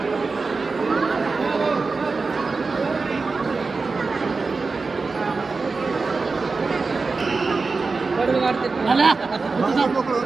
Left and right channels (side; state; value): left; quieter; 4.2 dB